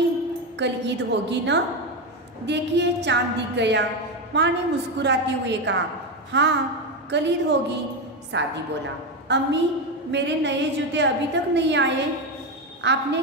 कल ईद होगी ना? देखिए चांद दिख गया। माँ ने मुस्कुराते हुए कहा, हाँ कल ईद होगी। सादी बोला, अम्मी मेरे नए जूते अभी तक नहीं आए। आपने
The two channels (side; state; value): both; normal; correlation 0.12